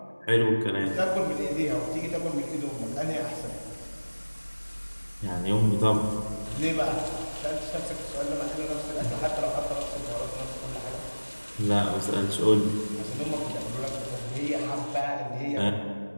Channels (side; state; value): both; inverted; correlation -1.00